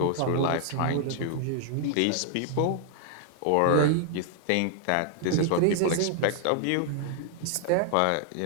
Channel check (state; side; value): different; both; correlation 0.00